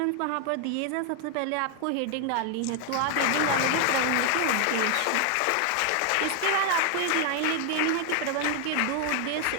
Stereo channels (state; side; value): different; both; correlation 0.00